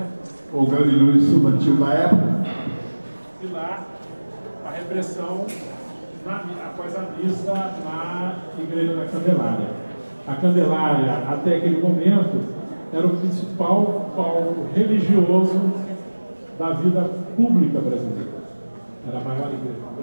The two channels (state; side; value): inverted; both; correlation -1.00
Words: O grande líder estudantil da época. E lá, a repressão após a missa na Igreja da Candelária. A Candelária, até aquele momento, era o principal palco religioso da vida pública brasileira. Era a maior igreja do